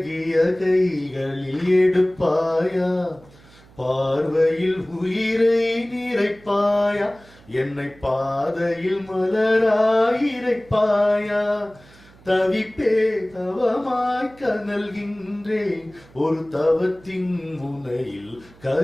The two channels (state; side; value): noise; right; hum, 25 dB below the sound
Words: கைகளில் எடுப்பாயா, பார்வையில் உயிரை நிறைப்பாயா, என்னை பாதையில் மலராயிரைப்பாயா, தவிப்பே தவமாய் கனல்கின்றேன், ஒரு தவத்தின் முனையில்